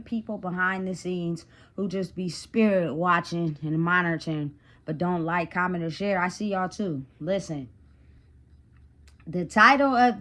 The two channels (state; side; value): identical; both; correlation 1.00